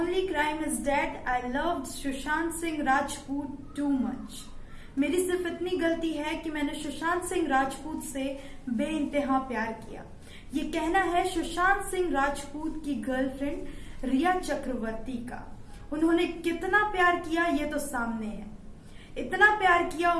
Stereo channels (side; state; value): both; identical; correlation 1.00